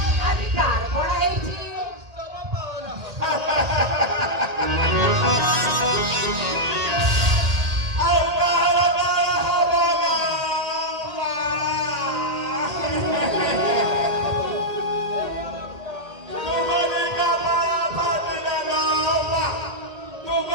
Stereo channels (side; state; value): left; late; 1.8 ms